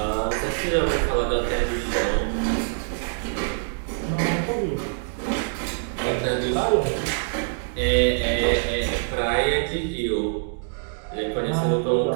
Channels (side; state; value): left; silent; digital silence